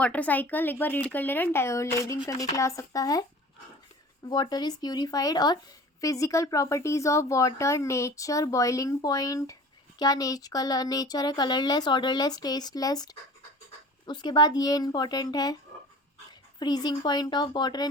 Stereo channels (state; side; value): normal; both; correlation 0.42